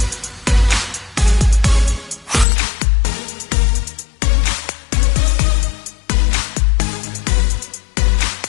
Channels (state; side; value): drops out; right; at 2.5 s